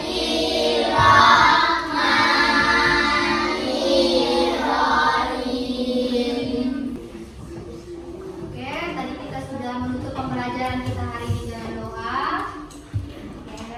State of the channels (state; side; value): identical; both; correlation 1.00